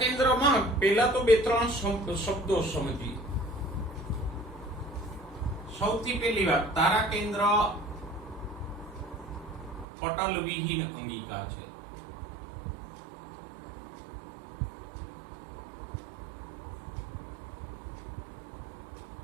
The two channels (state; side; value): drops out; left; at 9.9 s